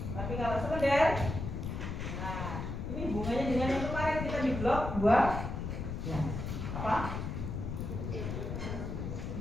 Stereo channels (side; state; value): left; noise; rumble, 4 dB below the sound